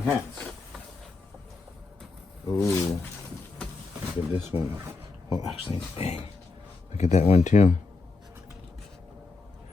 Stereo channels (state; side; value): quieter; right; 3.8 dB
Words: hats. Ooh. Look at this one. Oh, actually, dang. Look at that one too.